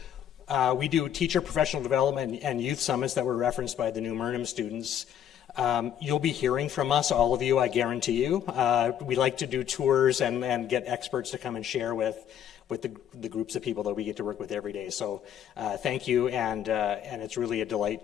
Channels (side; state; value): right; quieter; 9.7 dB